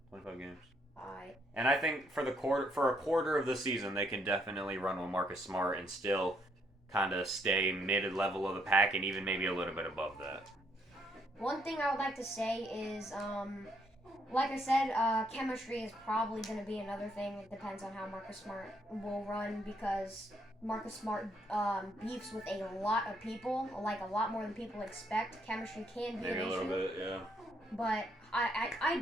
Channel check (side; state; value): both; normal; correlation 0.71